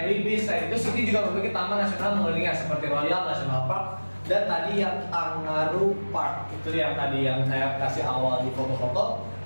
Beach. Itu Sydney juga memiliki taman nasional mengelilingnya seperti Royal National Park dan tadi yang Kangaroo Park. Itu yang tadi yang saya kasih awal di foto-foto.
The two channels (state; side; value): inverted; both; correlation -1.00